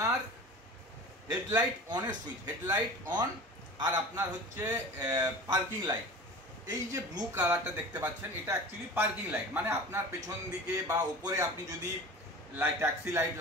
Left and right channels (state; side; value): normal; both; correlation 0.37